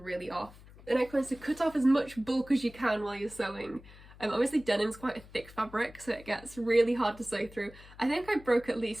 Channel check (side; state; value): left; noise; hum, 20 dB below the sound